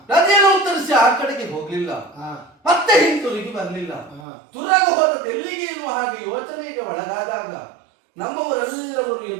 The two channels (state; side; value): drops out; left; at 4.2 s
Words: ನದಿಯನ್ನು ಉತ್ತರಿಸಿ ಆ ಕಡೆಗೆ ಹೋಗ್ಲಿಲ್ಲ, ಮತ್ತೆ ಹಿಂತಿರುಗಿ ಬರಲಿಲ್ಲ. ತುರಗ ಹೋದದ್ದು ಎಲ್ಲಿಗೆ ಎನ್ನುವ ಹಾಗೆ ಯೋಚನೆಗೆ ಒಳಗಾದಾಗ ನಮ್ಮವರೆಲ್ಲವರು